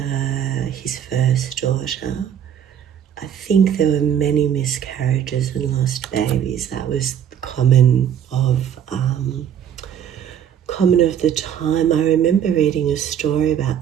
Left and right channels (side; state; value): left; quieter; 9.2 dB